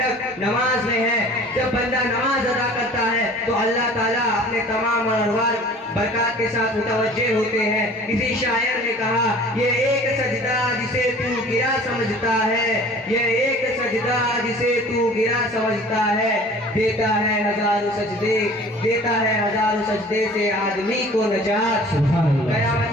نماز میں ہے. جب بندہ نماز ادا کرتا ہے تو اللہ تعالیٰ اپنے تمام انوار برکات کے ساتھ متوجہ ہوتے ہیں. کسی شاعر نے کہا، یہ ایک سجدہ جسے تو گرا سمجھتا ہے، یہ ایک سجدہ جسے تو گرا سمجھتا ہے، دیتا ہے ہزاروں سجدے، دیتا ہے ہزاروں سجدے سے آدمی کو نجات.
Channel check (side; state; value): both; normal; correlation 0.47